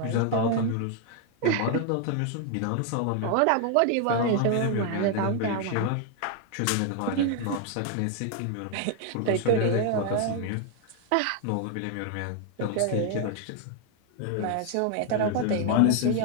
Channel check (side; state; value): both; different; correlation 0.00